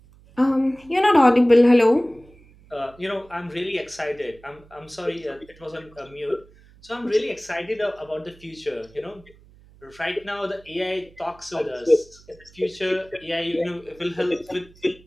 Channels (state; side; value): noise; right; hum, 26 dB below the sound